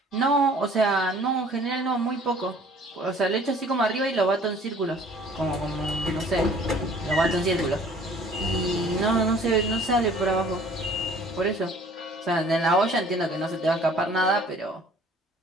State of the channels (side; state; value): both; normal; correlation 0.53